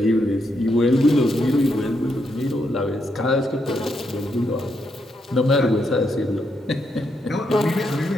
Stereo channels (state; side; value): normal; both; correlation 0.79